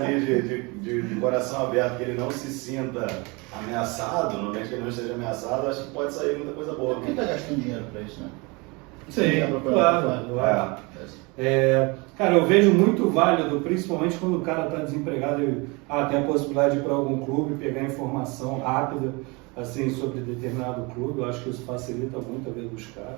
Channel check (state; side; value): quieter; left; 27.5 dB